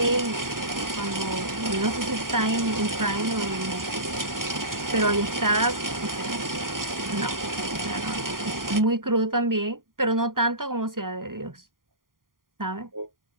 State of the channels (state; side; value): late; left; 0.91 ms